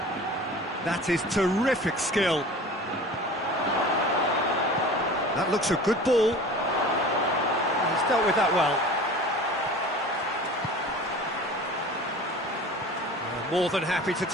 That is terrific skill. That looks a good ball. He's dealt with that well. More than happy to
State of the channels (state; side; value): normal; both; correlation 0.40